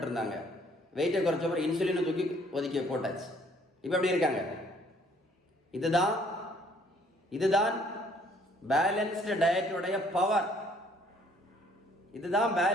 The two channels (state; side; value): normal; both; correlation 0.61